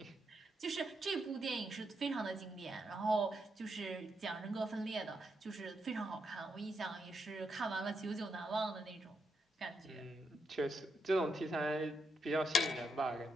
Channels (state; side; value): normal; both; correlation 0.81